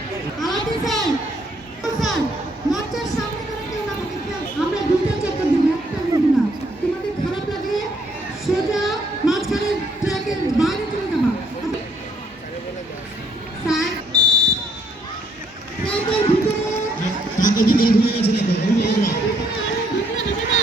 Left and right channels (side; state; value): both; normal; correlation 0.69